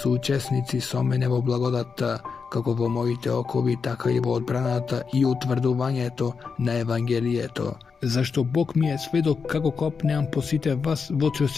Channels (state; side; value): quieter; right; 5.4 dB